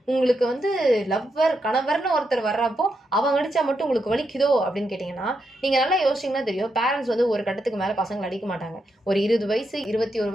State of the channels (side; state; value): both; normal; correlation 0.83